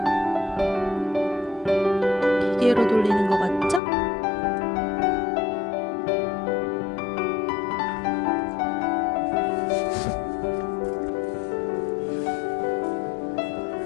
기계로 돌리는 거 맞죠?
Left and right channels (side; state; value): right; drops out; at 3.8 s